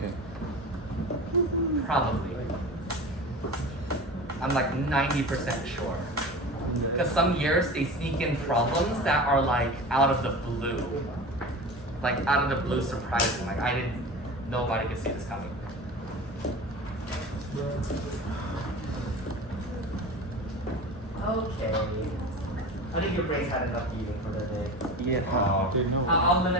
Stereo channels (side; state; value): both; normal; correlation 0.32